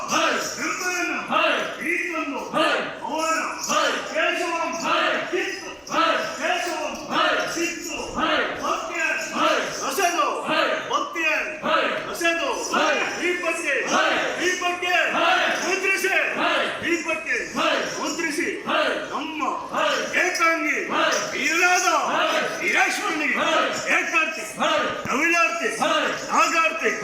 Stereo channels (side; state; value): both; identical; correlation 1.00